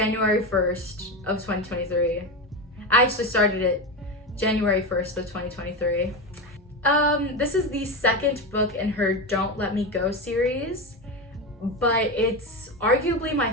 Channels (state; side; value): normal; both; correlation 0.18